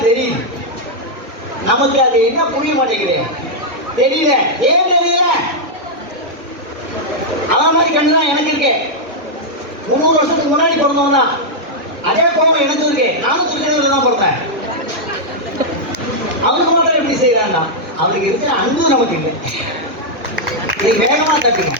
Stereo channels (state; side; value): late; left; 1.0 ms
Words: தெரியுது நமக்கு அது என்ன புரிய மாட்டேங்குது தெரியல ஏன் தெரியல அவன் மாதிரி கண்டுதான் எனக்கு இருக்கு 300 வருஷத்துக்கு முன்னாடி பிறந்தவன் தான் அதே கோவம் எனக்கு இருக்கு நானும் திருக்கடையில தான் பிறந்தேன் அவனுக்கு மாத்திரம் எப்படி செய்யறான்னா அவனுக்கு இருக்கிற அன்பு நமக்கு இல்லை இது வேகமா தட்டுங்க